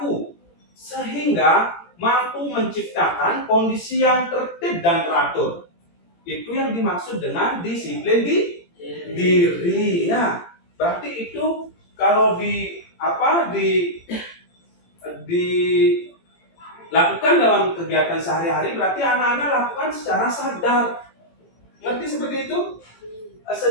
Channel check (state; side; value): late; right; 17 ms